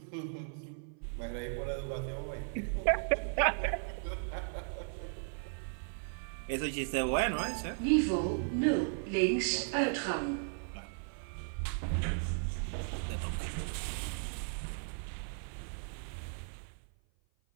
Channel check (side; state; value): left; silent; 54 dB below the other